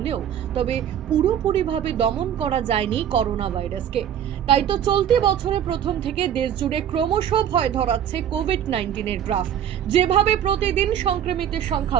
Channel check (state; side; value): quieter; left; 9.8 dB